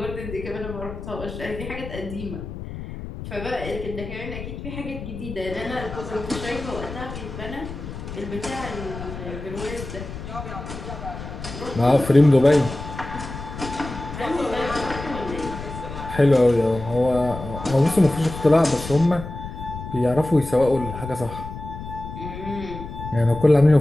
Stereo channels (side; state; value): left; noise; rumble, 10 dB below the sound